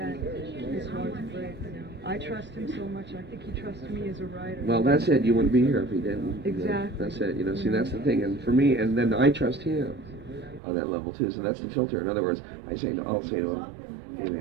is hard to break. You know, I trust him so much. I think he trusts me as a writer. Well, that's it. You wouldn't be here if he didn't. Exactly. You know, that's it. You know, see, that's the thing. And for me, and then I trust him on that level too. So that's the filter. In other words, I'll say to him, hey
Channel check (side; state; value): left; drops out; at 10.6 s